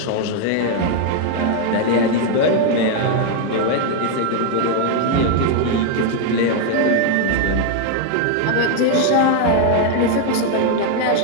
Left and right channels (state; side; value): different; both; correlation 0.01